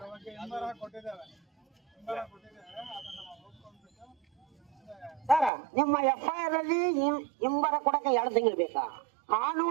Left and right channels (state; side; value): drops out; left; at 5.5 s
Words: ಸರ್, ನಿಮ್ಮ FIR ಅಲ್ಲಿ ಹಿಂಬರ ಕೊಡಕ್ಕೆ 2 ತಿಂಗಳು ಬೇಕಾ?